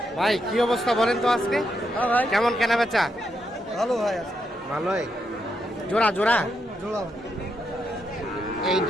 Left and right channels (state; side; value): normal; both; correlation 0.81